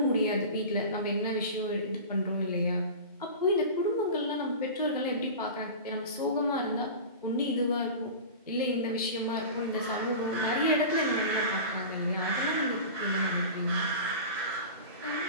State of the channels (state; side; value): inverted; both; correlation -0.32